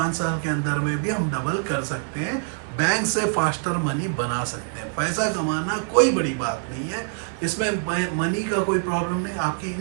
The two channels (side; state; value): left; silent; 62 dB below the other